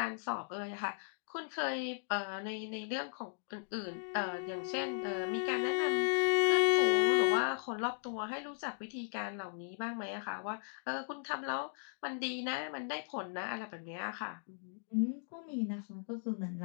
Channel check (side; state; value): right; silent; digital silence